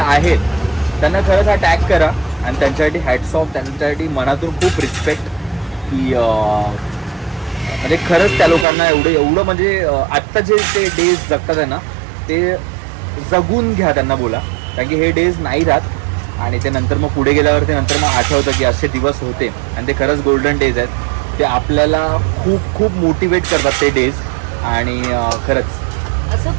त्यांना खरंच हा टॅग करा. आणि त्यांच्यासाठी हॅट्स ऑफ, त्यांच्यासाठी मनातून खूप रिस्पेक्ट की म्हणजे खरंच त्या लोकांना एवढं म्हणजे आत्ता जे ते डेज जगतात आहे ना ते जगून घ्या त्यांना बोला. कारण की हे डेज नाही राहत आणि ते नंतर मग पुढे गेल्यावरती नंतर मग आठवतं की असे दिवस होते आणि ते खरंच गोल्डन डेज आहेत. ते आपल्याला खूप खूप मोटिवेट करतात ते डेज. आणि खरंच असं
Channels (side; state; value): left; drops out; at 8.7 s